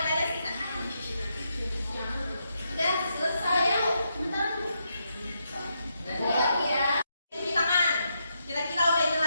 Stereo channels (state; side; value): inverted; both; correlation -0.81